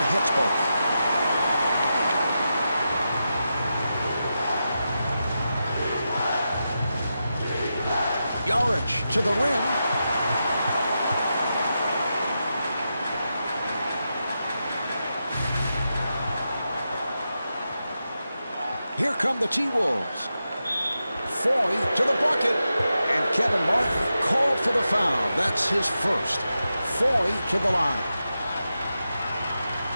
hits both. Yarich to the rim. Here come the T-Wolves. Foy to the bucket. And Kevin Martin called for the foul. That's his first. Foy to the line.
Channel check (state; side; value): inverted; both; correlation -0.89